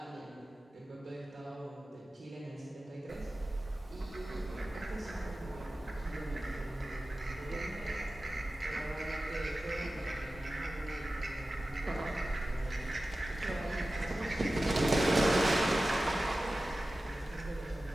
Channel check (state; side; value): normal; both; correlation 0.95